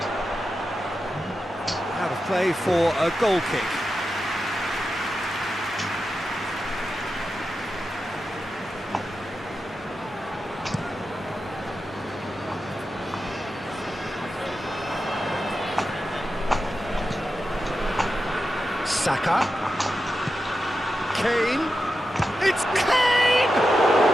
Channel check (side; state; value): both; normal; correlation 0.90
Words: Out of play for a goal kick. Saka. Kane. It's Kane!